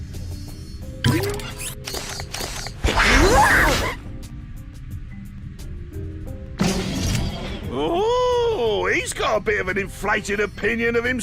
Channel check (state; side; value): identical; both; correlation 1.00